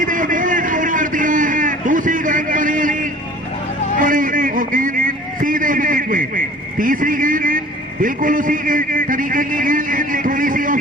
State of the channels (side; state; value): both; normal; correlation 0.46